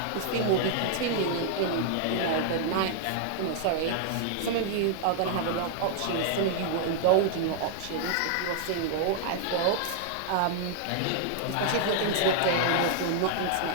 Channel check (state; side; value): different; both; correlation 0.00